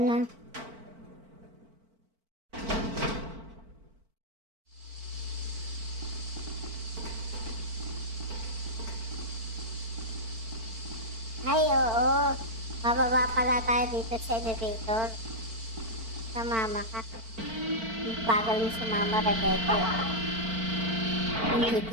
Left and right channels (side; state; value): left; late; 4.5 ms